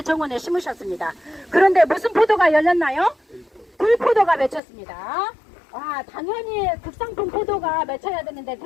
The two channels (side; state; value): right; drops out; at 4.6 s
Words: 정원에 심으셨습니다. 그런데 무슨 포도가 열렸나요? 들포도가 맺혔습니다. 당연히 극상품 포도가 맺혀야 되는데